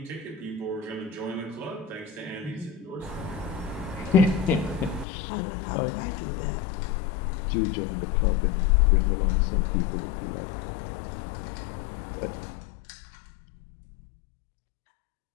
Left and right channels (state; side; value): drops out; right; at 5.1 s